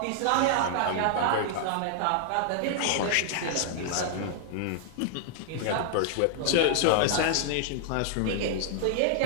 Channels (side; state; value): both; different; correlation -0.01